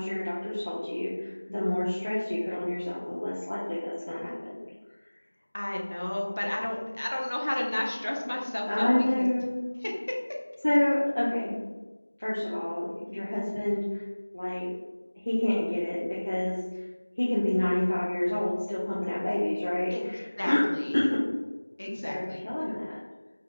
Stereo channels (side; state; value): both; inverted; correlation -1.00